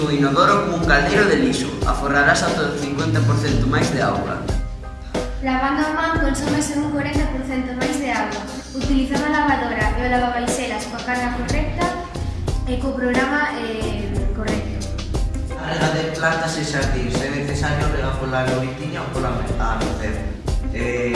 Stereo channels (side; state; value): both; identical; correlation 1.00